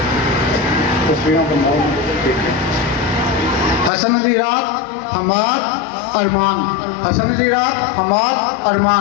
हसन अली रात, हमाद, अरमान। हसन अली रात, हमाद,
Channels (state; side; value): drops out; right; at 3.9 s